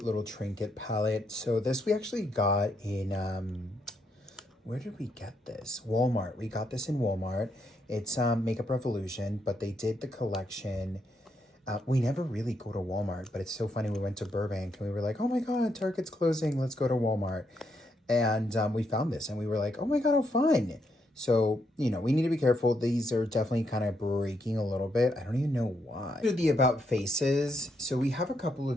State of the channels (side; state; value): both; normal; correlation 0.78